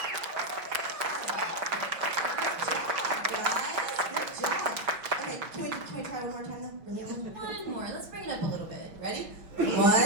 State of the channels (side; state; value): left; late; 5.5 ms